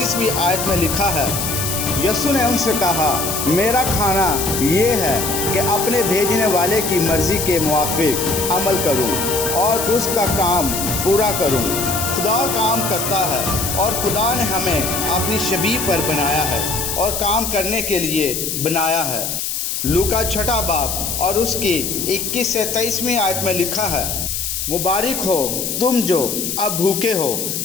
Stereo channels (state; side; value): noise; left; hiss, 3 dB below the sound